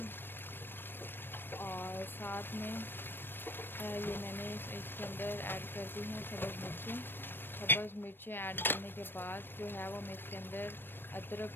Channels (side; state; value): right; late; 0.098 ms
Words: और साथ में ये मैंने इसके अंदर ऐड कर दी हैं सब्ज़ मिर्चें ऐड करने के बाद जो है वो मैं इसके अंदर अदरक